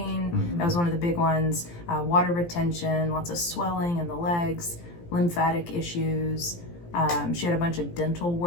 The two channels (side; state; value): right; late; 17 ms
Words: That was one of the big ones. Water retention, lots of swelling in the legs, lymphatic issues. She had a bunch of dental